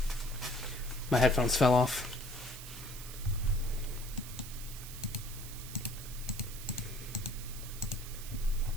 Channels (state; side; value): noise; right; hiss, 12 dB below the sound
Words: My headphones fell off.